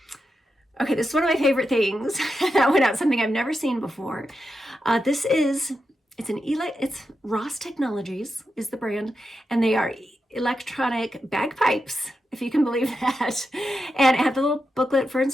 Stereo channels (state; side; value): normal; both; correlation 0.88